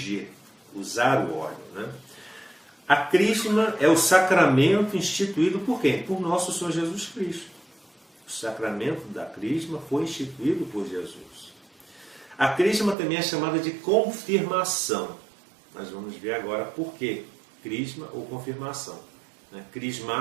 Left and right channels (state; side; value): drops out; left; at 13.0 s